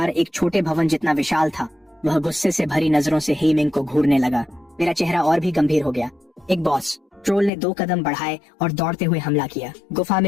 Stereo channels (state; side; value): drops out; right; at 7.5 s